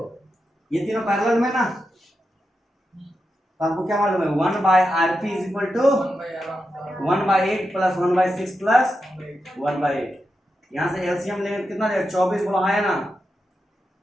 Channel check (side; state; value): both; normal; correlation 0.88